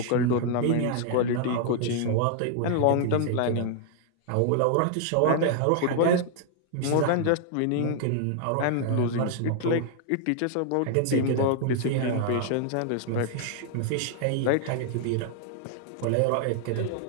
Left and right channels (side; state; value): both; different; correlation 0.00